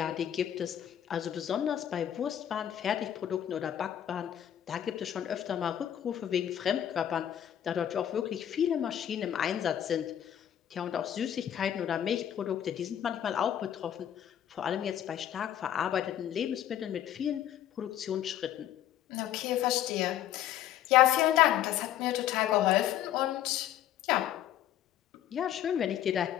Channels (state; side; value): quieter; right; 11.0 dB